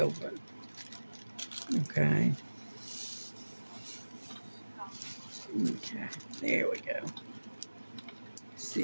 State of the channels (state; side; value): inverted; both; correlation -1.00